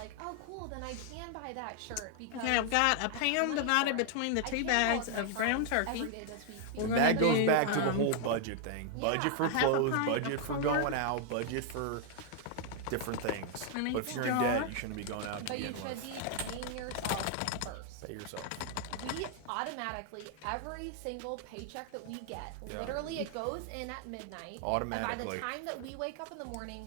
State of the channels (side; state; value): both; different; correlation 0.00